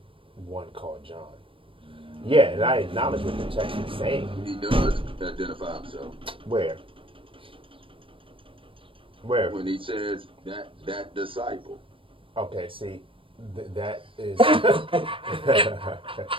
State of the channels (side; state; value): left; late; 0.25 ms